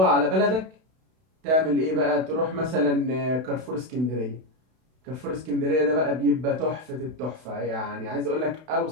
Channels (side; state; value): left; late; 32 ms